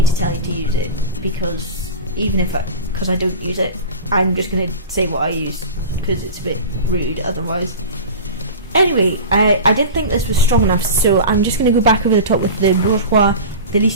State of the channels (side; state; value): both; inverted; correlation -0.31